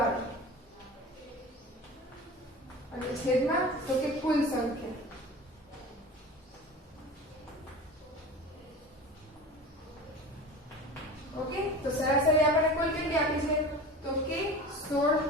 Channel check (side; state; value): both; normal; correlation 0.34